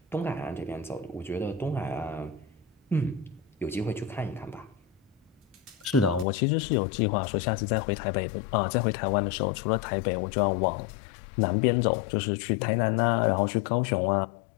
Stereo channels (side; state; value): right; drops out; at 6.2 s